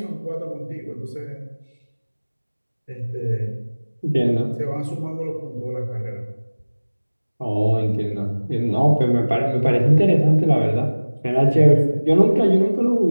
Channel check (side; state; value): both; inverted; correlation -1.00